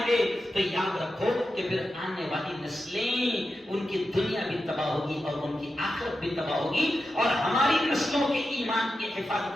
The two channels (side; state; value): both; normal; correlation 0.90